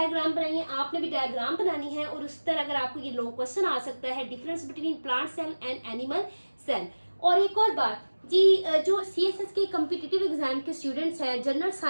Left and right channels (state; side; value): inverted; both; correlation -1.00